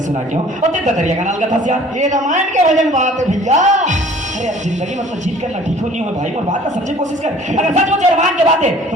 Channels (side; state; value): both; normal; correlation 0.51